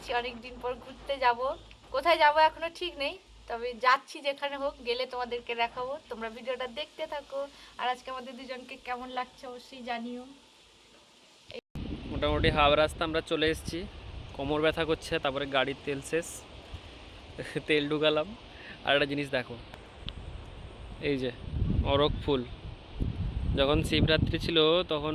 অনেক দিন পর ঘুরতে যাব। কোথায় যাব এখনো ঠিক নেই, তবে যাচ্ছি যেখানে হোক, গেলে তোমাদেরকে দেখাবো। তোমরা ভিডিওটা দেখতে থাকো। আর আজকে আমাদের দুজনকে কেমন লাগছে অবশ্যই জানিও। মোটামুটি হাওড়া রাস্তা আমরা চলে এসেছি। কোমর ব্যথা করছে, তারপরে গাড়ির তেল শেষ, তেল ঢুকালাম। আর একটা জিনিস দেখো, এই যে অরক ফুল। যখন শিবরাত্রি ছিল তখন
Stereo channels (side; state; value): both; identical; correlation 1.00